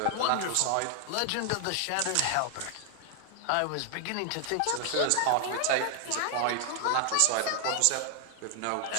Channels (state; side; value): different; both; correlation 0.00